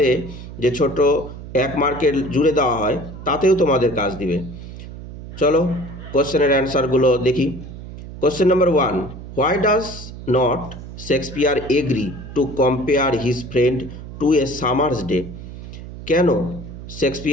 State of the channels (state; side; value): noise; right; hum, 12 dB below the sound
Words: যে ছোট 1 মার্কের জুড়ে দেওয়া হয় তাতেও তোমাদের কাজ দিবে। চলো কোশ্চেনের অ্যান্সারগুলো দেখি। Question number 1, why does not Shakespeare agree to compare his friend to a summer's day? কেন